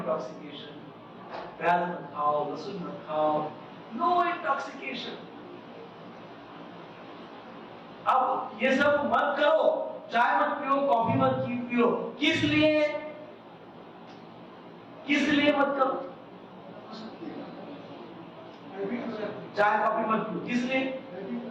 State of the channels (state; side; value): identical; both; correlation 1.00